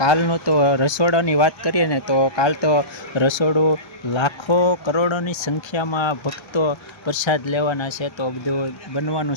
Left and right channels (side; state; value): right; late; 1.3 ms